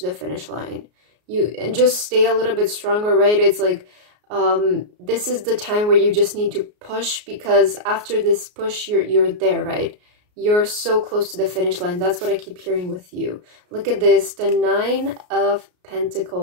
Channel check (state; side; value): late; left; 33 ms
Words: the finish line. You and just stay a little bit stronger, right? It's like this is the time where you just need to push, because after this push you're there, right? You're so close to the finish line. That's what I keep hearing with you. Look at this, the 9 of